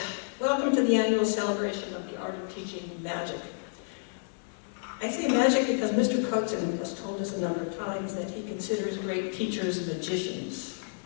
welcome to the annual celebration of the art of teaching magic. I say magic because Mr. Cotsen has told us a number of times that he considers great teachers magicians.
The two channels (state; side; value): silent; right; 58 dB below the other